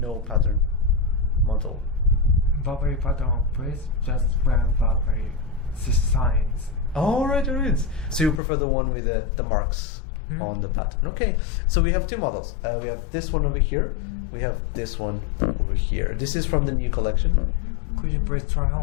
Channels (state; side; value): drops out; right; at 8.4 s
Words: no pattern model? Burberry pattern, please. Just wear Burberry signs. All right. So you prefer the one with the marks on the pattern. Okay. So we have two models. We have this one over here. We have this one over here. This is from the new collection. Could you please try